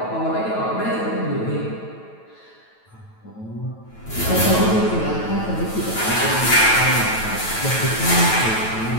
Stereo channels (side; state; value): right; late; 9.1 ms